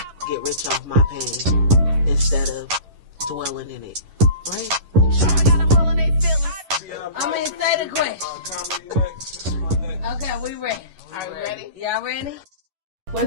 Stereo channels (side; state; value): left; late; 11 ms